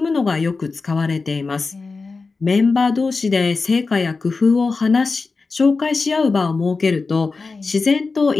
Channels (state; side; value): quieter; right; 4.2 dB